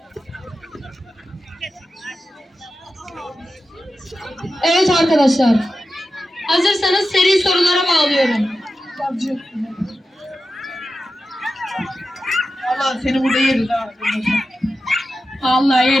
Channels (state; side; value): normal; both; correlation 0.92